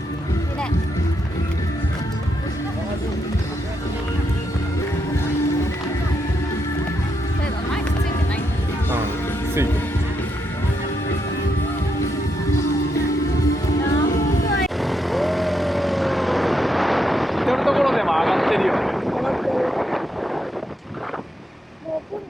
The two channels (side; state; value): both; normal; correlation 0.80